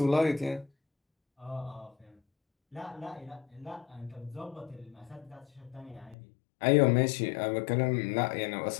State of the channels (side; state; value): right; drops out; at 6.2 s